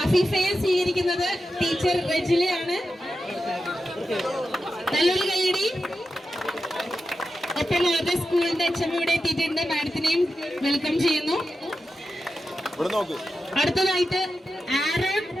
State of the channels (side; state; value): both; normal; correlation 0.90